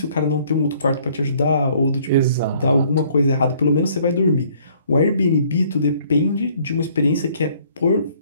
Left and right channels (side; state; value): both; inverted; correlation -0.61